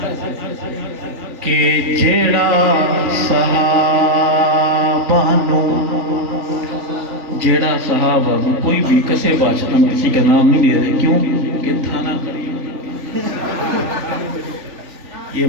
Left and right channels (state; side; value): late; left; 3.4 ms